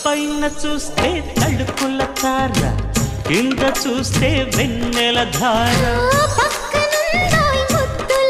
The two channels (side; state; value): both; identical; correlation 1.00